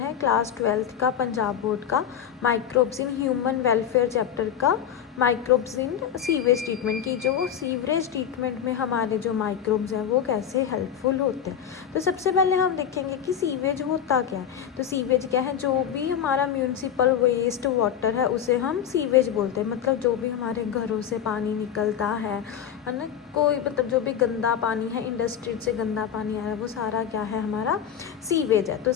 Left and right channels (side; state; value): right; quieter; 9.0 dB